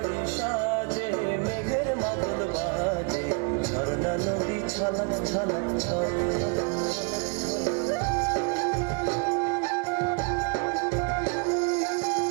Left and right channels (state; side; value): quieter; left; 34.5 dB